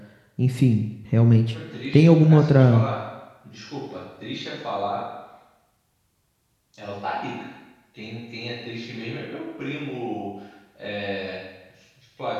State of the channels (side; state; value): both; identical; correlation 1.00